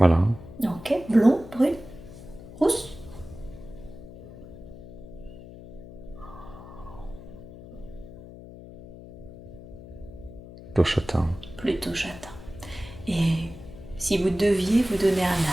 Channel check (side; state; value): left; noise; hum, 15 dB below the sound